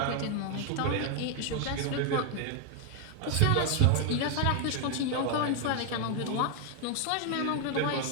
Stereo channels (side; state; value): both; different; correlation 0.01